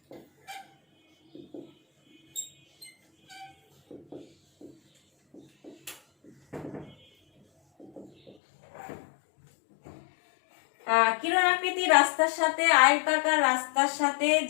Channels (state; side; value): drops out; right; at 8.3 s